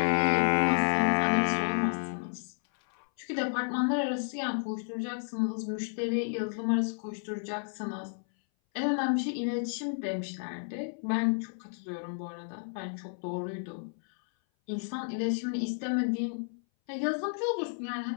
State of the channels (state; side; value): silent; right; 57 dB below the other